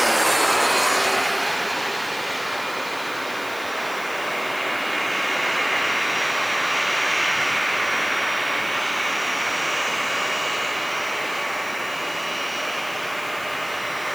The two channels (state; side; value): noise; left; hiss, 17 dB below the sound